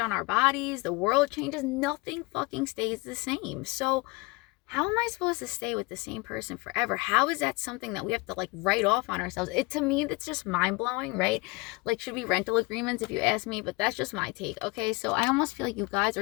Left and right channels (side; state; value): right; quieter; 24.6 dB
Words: our bodies, the world changes, nothing fucking stays the same. So how am I supposed to stay with the same person forever? How is that something that we have to like write off on ourselves? To me, that's just mind-blowing, right? Like, should be rental agreements if you ask me, but that's just my take. Okay, so I almost feel like you guys